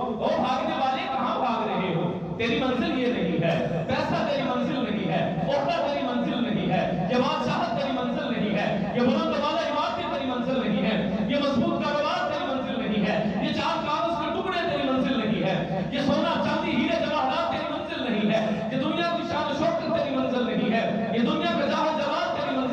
او بھاگنے والے کہاں بھاگ رہے ہو؟ تیری منزل یہ نہیں ہے، پیسہ تیری منزل نہیں ہے، عہدہ تیری منزل نہیں ہے، یہ بادشاہت تیری منزل نہیں ہے، یہ بلند والا عمارتیں تیری منزل نہیں ہے، یہ مضبوط کاروبار تیری منزل نہیں ہے، یہ چار کاغذ کے ٹکڑے تیری منزل نہیں ہے، یہ سونا چاندی ہیرے جواہرات تیری منزل نہیں ہے، یہ دنیا کی شان و شوکت تیری منزل نہیں ہے، یہ دنیا کا جاہ جلال تیری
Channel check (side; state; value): both; identical; correlation 1.00